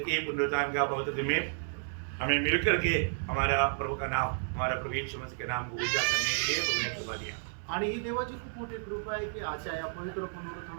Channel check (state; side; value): silent; left; 57 dB below the other